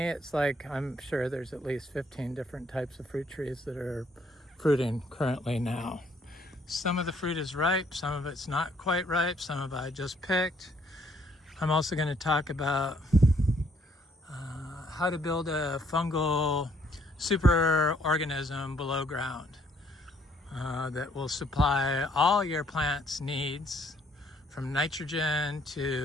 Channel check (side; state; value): both; normal; correlation 0.66